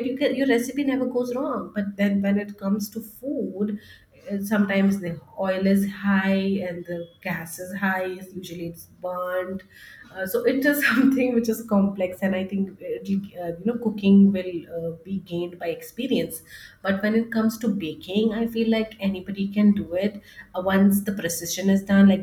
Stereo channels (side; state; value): both; identical; correlation 1.00